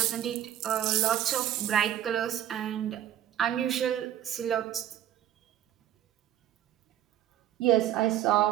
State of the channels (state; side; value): quieter; left; 11.6 dB